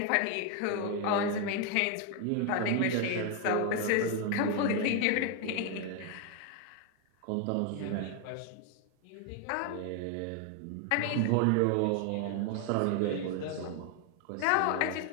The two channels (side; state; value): both; different; correlation 0.01